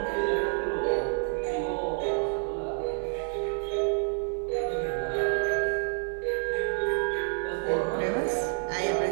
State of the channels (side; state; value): left; silent; 59 dB below the other